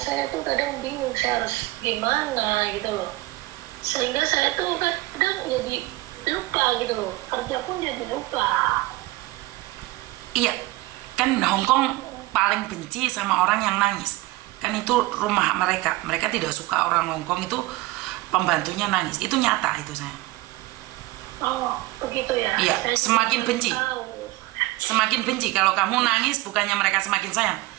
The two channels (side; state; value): left; quieter; 19.5 dB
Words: tuh kadang bingung saya harus gimana gitu loh, sehingga saya tuh kadang jadi lupa gitu loh, kerja pun jadi lupa. Iya, kan Hongkong paling benci sama orang yang nangis. Kan itu rumah mereka tidak suka orang Hongkong itu pembantunya nangis. Itu nyata itu, saya. Oh, begitu ya. Iya, semakin benci. Semakin benci. Kalau kamu nangis, bukannya mereka semakin sayang,